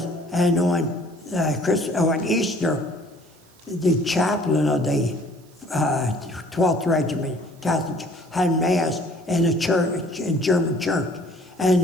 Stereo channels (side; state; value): right; noise; hiss, 30 dB below the sound